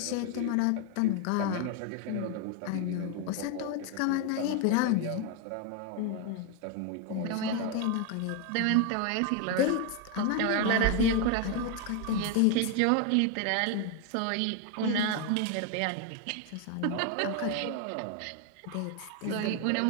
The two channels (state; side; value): different; both; correlation 0.01